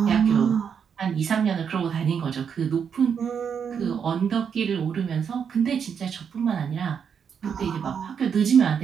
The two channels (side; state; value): left; quieter; 7.1 dB